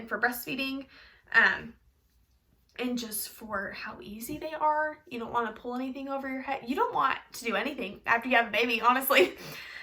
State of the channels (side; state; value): both; identical; correlation 1.00